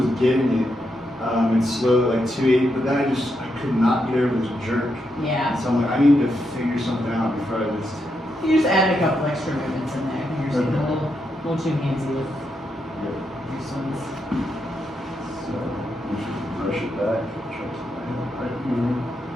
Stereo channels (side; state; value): both; normal; correlation 0.82